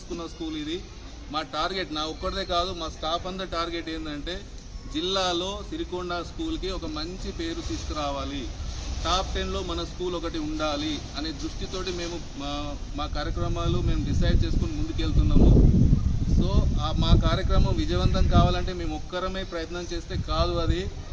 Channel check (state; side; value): identical; both; correlation 1.00